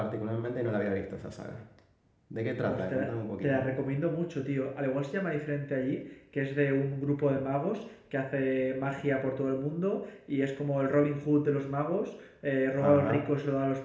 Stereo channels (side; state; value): both; identical; correlation 1.00